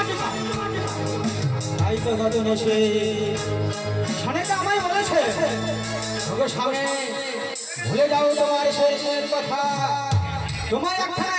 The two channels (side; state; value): both; identical; correlation 1.00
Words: তাই তো গজন এসে সানেটা আমায় বলেছে, ওগো স্বামী ভুলে যাও তোমার শেষের কথা, তোমার একটা